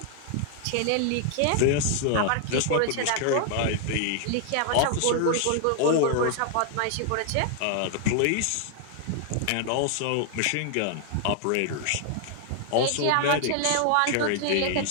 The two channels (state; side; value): different; both; correlation 0.00